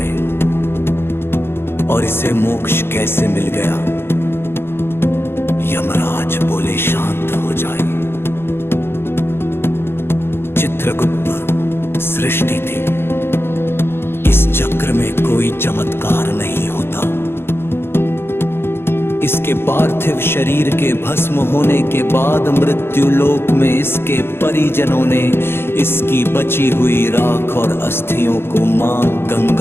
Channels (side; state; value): right; late; 0.11 ms